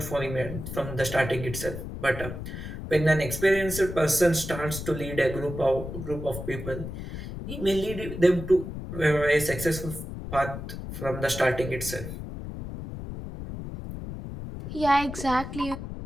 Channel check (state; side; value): noise; left; rumble, 8 dB below the sound